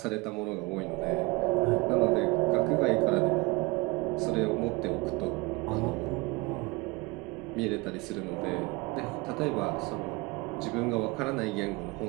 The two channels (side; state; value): left; quieter; 24.6 dB